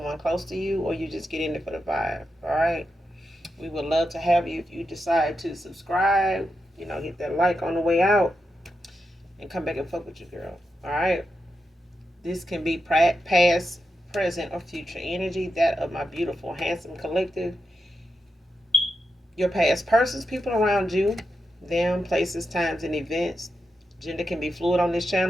close to you, or you just get in it for the vibe. All right. We would love to have you if you decide to subscribe. Hit that like on the way out and come back and fuck with you, girl. All right. This can be past, present, or future energy. That of my beautiful, handsome collective. Your past persons, people around you, them, places, times, and events. Gender can be fluid on this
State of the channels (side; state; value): both; normal; correlation 0.87